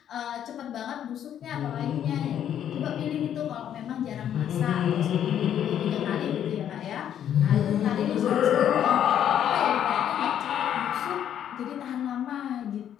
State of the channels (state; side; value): quieter; right; 9.9 dB